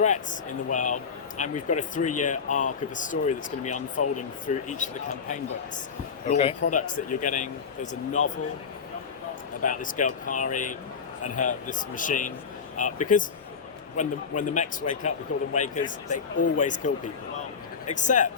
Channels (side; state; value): right; quieter; 6.0 dB